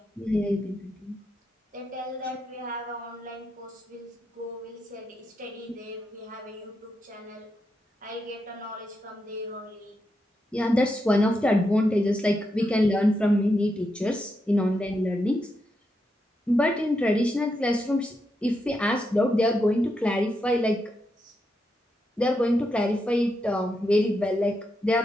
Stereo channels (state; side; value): normal; both; correlation 0.84